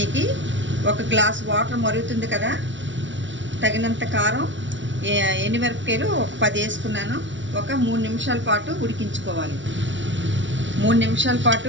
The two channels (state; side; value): late; left; 0.55 ms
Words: 1 గ్లాస్ వాటర్ మరుగుతుంది కదా. తగినంత కారం, ఎండుమిరపకాయలు ఒక 10 వేసుకున్నాను. ఒక 3 నిమిషాల పాటు ఉడికించుకోవాలి. 3 నిమిషాల